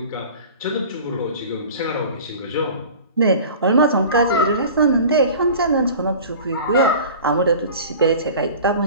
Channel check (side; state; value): both; inverted; correlation -0.40